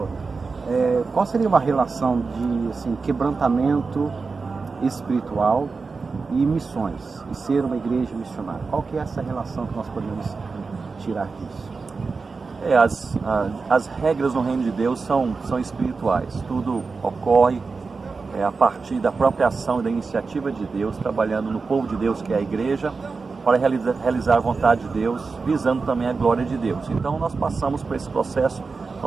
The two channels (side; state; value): left; quieter; 4.5 dB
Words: qual seria uma relação de quebrantamento espiritual e missões, e ser uma igreja missionária? Qual que é essa relação que nós podemos tirar disso? As regras no reino de Deus são espirituais. Tudo ocorre a partir da própria ação e da iniciativa de Deus, trabalhando no povo de Deus, que é a igreja, para realizar a vontade de Deus, visando também a glória de Deus. Então nós passamos por esse processo.